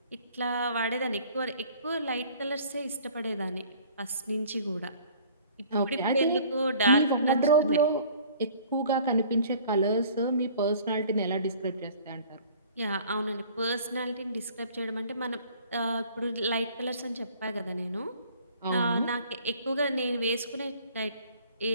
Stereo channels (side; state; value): both; inverted; correlation -0.51